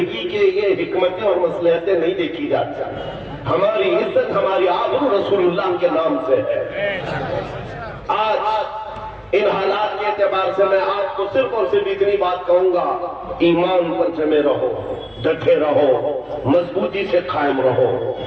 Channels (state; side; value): identical; both; correlation 1.00